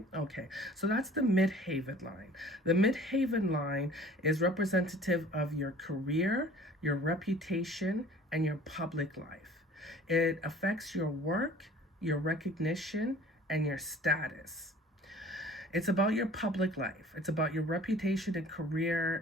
Okay, so that's the Midhaven line. The Midhaven line is representative of your career, your reputation, and your public life. It affects your work, your recognition, and your status. It's about your public life. It's about your reputation and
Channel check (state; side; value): normal; both; correlation 0.48